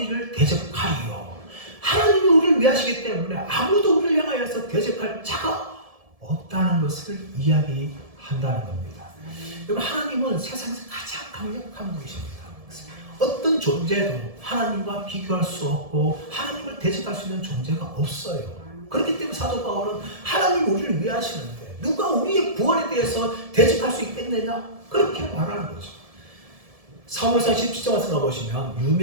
대적하리요? 하나님이 우리를 위하시기 때문에 아무도 우리를 향하여서 대적할 자가 없다는 것을 이야기한다는 겁니다. 여러분, 하나님은 세상에서 가장 강력한 분이십니다. 어떤 존재도 하나님과 비교할 수 없고 하나님을 대적할 수 있는 존재가 없어요. 그렇기 때문에 사도 바울은 하나님이 우리를 위하시는데 누가 우리의 구원에 대해서 대적할 수 있겠느냐? 그렇게 말하는 거죠. 사무엘상 17장 같은 거 보시면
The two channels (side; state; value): left; late; 1.7 ms